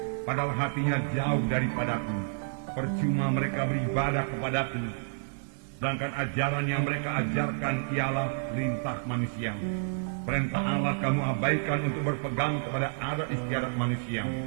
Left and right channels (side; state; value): left; silent; digital silence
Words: padahal hatinya jauh daripadaku. Percuma mereka beribadah kepadaku, sedangkan ajaran yang mereka ajarkan ialah perintah manusia. Perintah Allah kamu abaikan untuk berpegang kepada adat istiadat manusia."